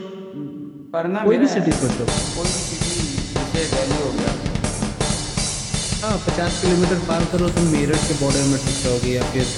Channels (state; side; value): identical; both; correlation 1.00